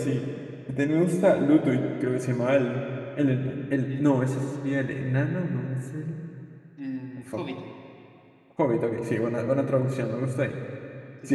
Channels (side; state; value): both; identical; correlation 1.00